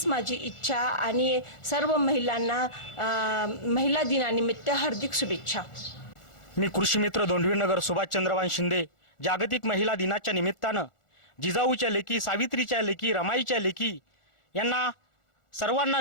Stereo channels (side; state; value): right; late; 1.4 ms